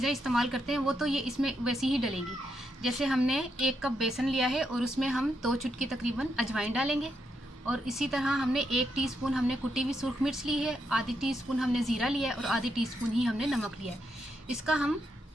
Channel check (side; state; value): both; normal; correlation 0.81